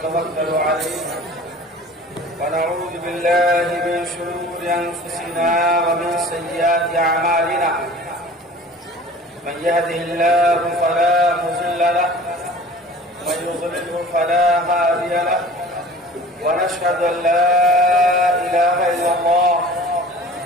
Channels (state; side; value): normal; both; correlation 0.44